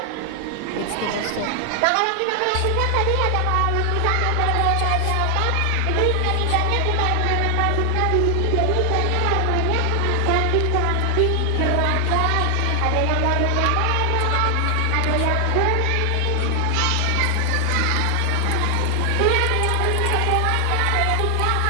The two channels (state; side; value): different; both; correlation 0.00